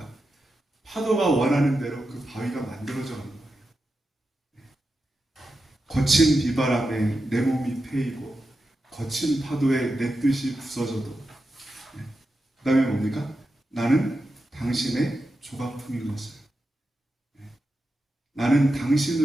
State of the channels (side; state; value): both; normal; correlation 0.89